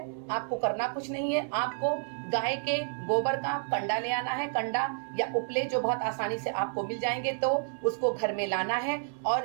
आपको करना कुछ नहीं है, आपको गाय के गोबर का कंडा ले आना है। कंडा या उपले जो बहुत आसानी से आपको मिल जाएंगे, तो उसको घर में लाना है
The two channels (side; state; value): left; silent; 58 dB below the other